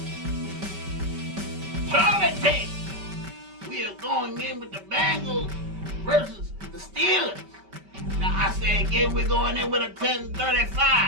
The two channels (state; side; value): late; left; 5.2 ms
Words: Charlie team, we are going in with the Bengals versus the Steelers. Now I say again, we're going in with a